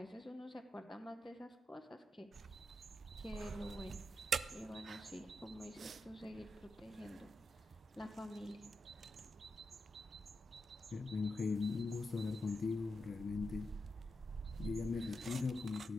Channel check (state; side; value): normal; both; correlation 0.86